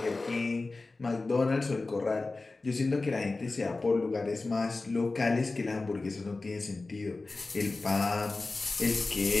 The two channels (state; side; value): quieter; right; 3.4 dB